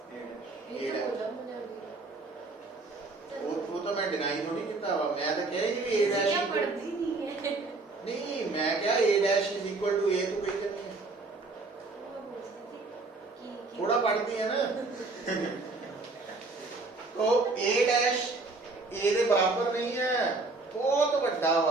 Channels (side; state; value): left; quieter; 3.5 dB